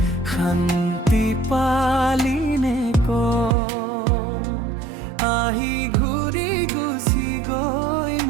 শান্তি পালিনে আহি ঘূৰি গুচি গৈ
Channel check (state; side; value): drops out; left; at 3.6 s